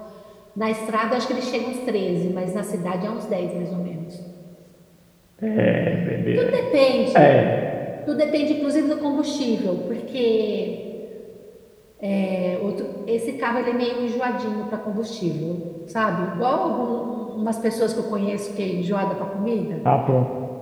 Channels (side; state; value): both; identical; correlation 1.00